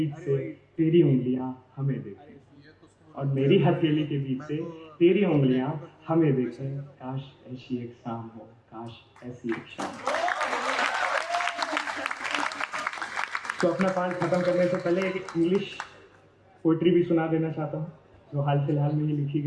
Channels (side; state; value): both; identical; correlation 1.00